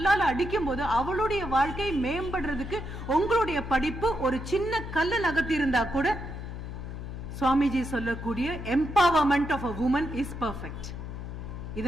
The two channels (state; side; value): noise; left; hum, 8 dB below the sound